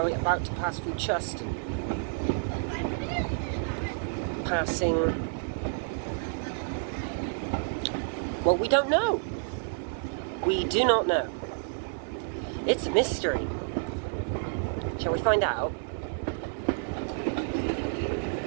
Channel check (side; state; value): left; silent; 58 dB below the other